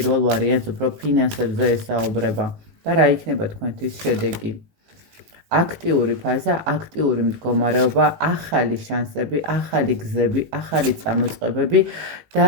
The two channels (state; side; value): late; left; 18 ms